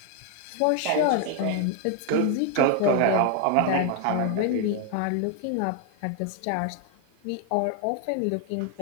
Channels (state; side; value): different; both; correlation 0.01